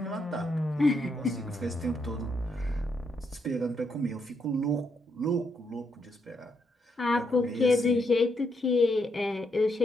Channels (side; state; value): both; normal; correlation 0.78